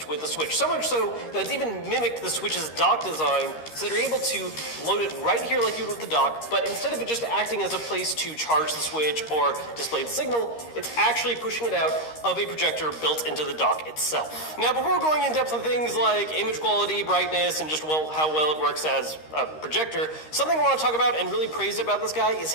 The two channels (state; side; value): late; right; 13 ms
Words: with the Switch. So much so that it's even mimicked the Switch's dock design, so that you're able to load it right here like you would with the dock, but instead of it just acting as a place to charge the Switch or display the signal, it's actually pushing it out of a projector built into the dock itself. Now, before going in depth on things like image quality, brightness, and just how well it works as a projector, something I want to talk about and really praise about this guy is